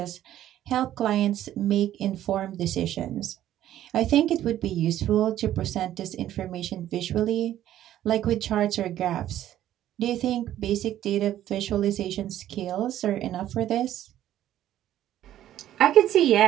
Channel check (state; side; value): quieter; left; 12.4 dB